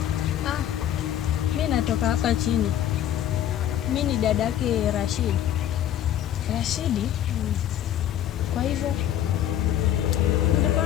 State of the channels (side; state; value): right; quieter; 11.2 dB